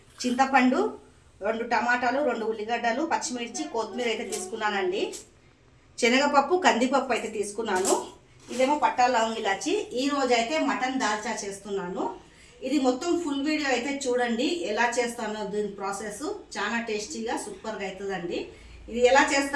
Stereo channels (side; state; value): both; identical; correlation 1.00